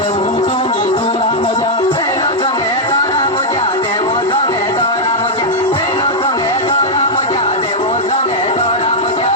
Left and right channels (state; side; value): normal; both; correlation -0.04